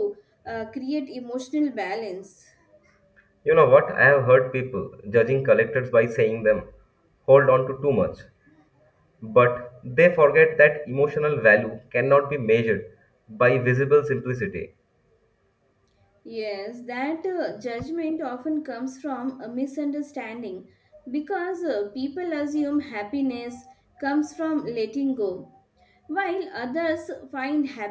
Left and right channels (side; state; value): both; identical; correlation 1.00